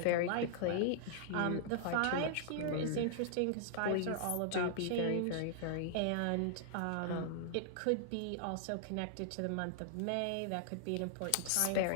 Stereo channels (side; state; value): both; different; correlation -0.01